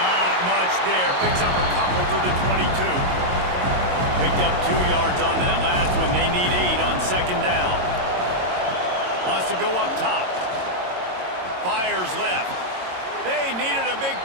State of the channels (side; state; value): left; late; 22 ms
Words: much there. Picks up a couple to the 22. Picked up 2 yards on that last one. They need 8 on second down. Wants to go up top. Fires left. They needed a big